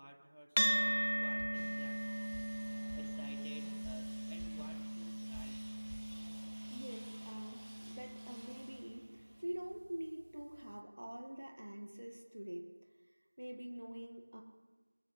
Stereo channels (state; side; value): inverted; both; correlation -1.00